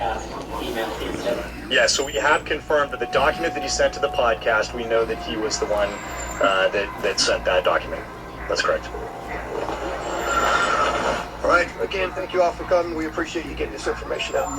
email he sent. Yeah, so we have confirmed that the document that he sent to the podcast, we know that he was the one that sent that document. That's correct. All right. Again, thank you all for coming. We appreciate you getting this information out.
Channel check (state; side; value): identical; both; correlation 1.00